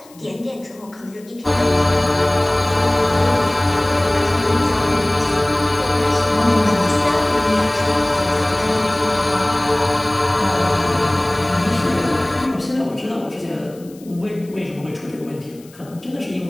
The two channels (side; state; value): left; noise; hiss, 26 dB below the sound